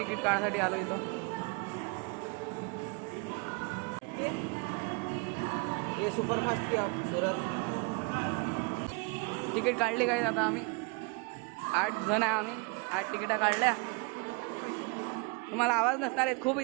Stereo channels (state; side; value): quieter; left; 31.7 dB